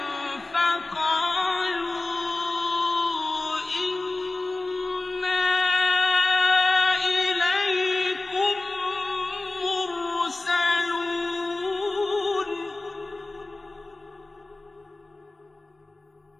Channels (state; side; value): quieter; right; 3.1 dB